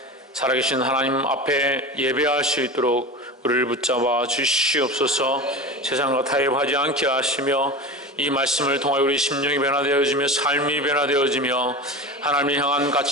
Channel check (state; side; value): normal; both; correlation 0.29